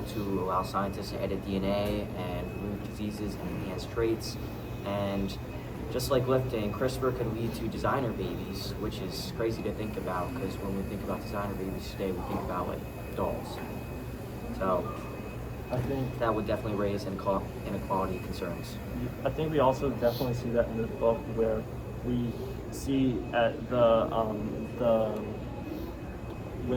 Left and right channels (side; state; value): both; identical; correlation 1.00